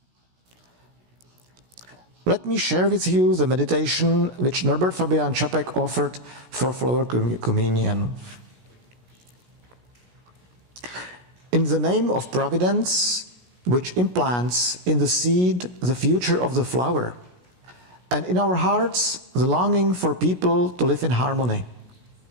Let me share with you the meditation which Norbert Fabian Čapek offered for flower communion. In the name of Providence, which implants in the seed the future of the flower, and in our hearts the longing for people to live in harmony.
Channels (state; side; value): late; left; 16 ms